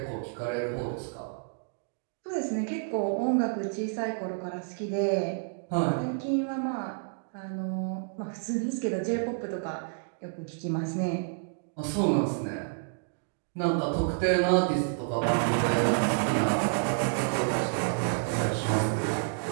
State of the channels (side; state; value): left; silent; digital silence